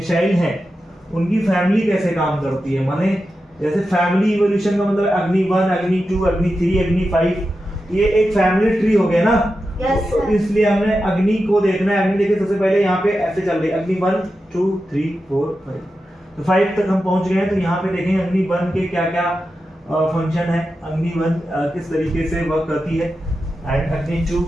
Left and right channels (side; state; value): both; normal; correlation 0.90